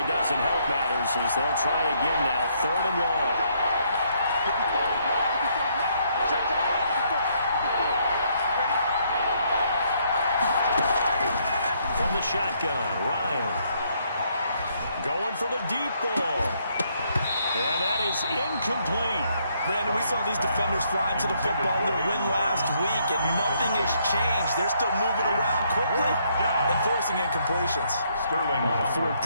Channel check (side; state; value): both; inverted; correlation -0.71